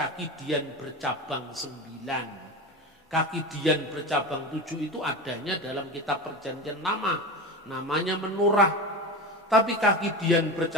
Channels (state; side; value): normal; both; correlation 0.25